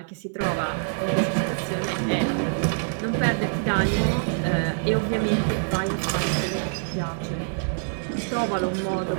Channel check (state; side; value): silent; left; digital silence